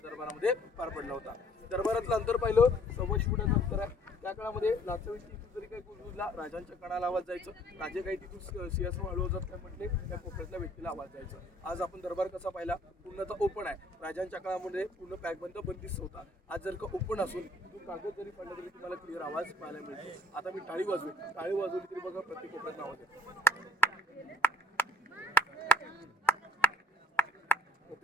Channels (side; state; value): both; normal; correlation 0.60